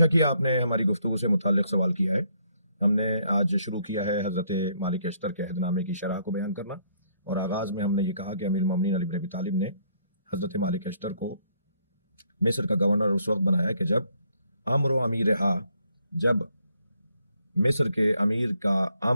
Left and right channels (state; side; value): inverted; both; correlation -0.70